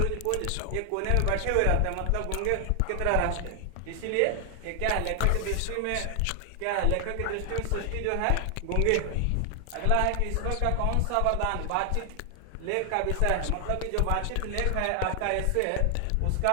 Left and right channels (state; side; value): different; both; correlation 0.00